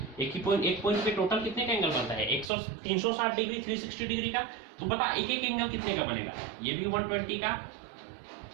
एक पॉइंट पे टोटल कितने का एंगल बनता है, 360 डिग्री, 360 डिग्री का। तो बता एक एंगल कितने का बनेगा, ये भी 120 का,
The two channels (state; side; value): drops out; left; at 2.5 s